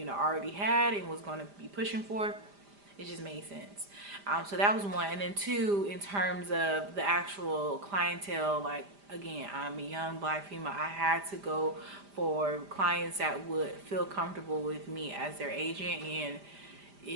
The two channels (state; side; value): late; left; 5.0 ms